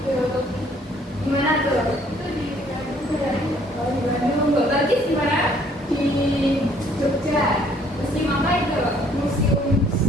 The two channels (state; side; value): normal; both; correlation 0.61